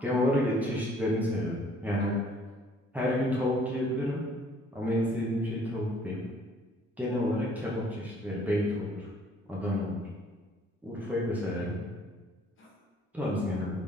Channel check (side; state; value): both; normal; correlation 0.59